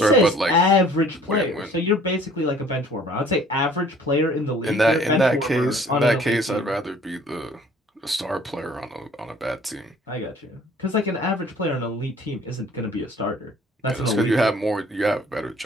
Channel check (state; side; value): normal; both; correlation 0.54